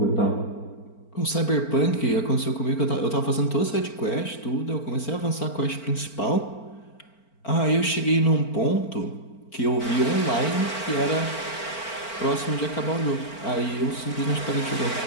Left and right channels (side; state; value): right; late; 4.4 ms